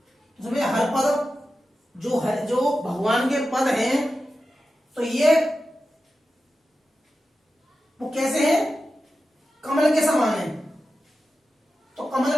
उसमें हर पद जो है, जो भगवान के पद हैं, तो ये वो कैसे है, कमल के समान है। तो कमल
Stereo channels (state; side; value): normal; both; correlation 0.92